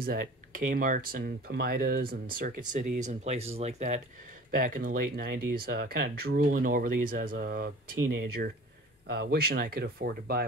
at Kmart's and Pomidas and Circuit Cities and places like that back in the late 90s, kind of drooling over these as a teenager, wishing I could afford to buy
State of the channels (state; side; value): normal; both; correlation 0.43